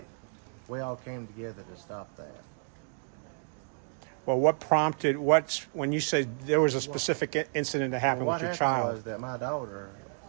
we all came together to stop that. Well, what prompted, when you said there was a specific incident that happened Well, with your what happened child? was that my daughter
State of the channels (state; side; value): silent; left; 57 dB below the other